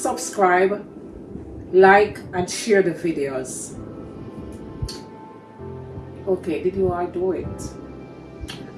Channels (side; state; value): both; identical; correlation 1.00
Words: subscribe, like, and share the videos. Okay, did you all do it?